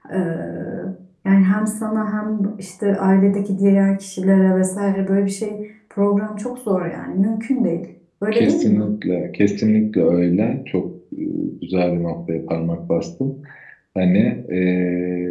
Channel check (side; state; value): both; identical; correlation 1.00